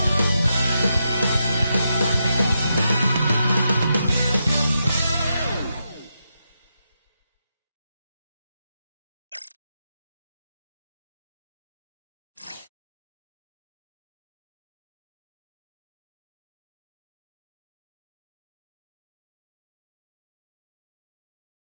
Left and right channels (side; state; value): both; inverted; correlation -0.85